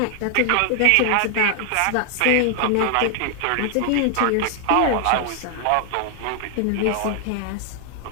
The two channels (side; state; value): both; different; correlation 0.00